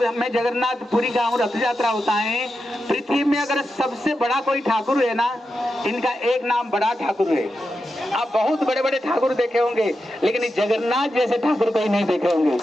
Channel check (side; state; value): both; normal; correlation 0.89